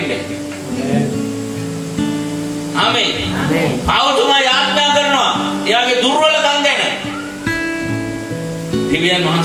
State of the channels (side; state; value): both; identical; correlation 1.00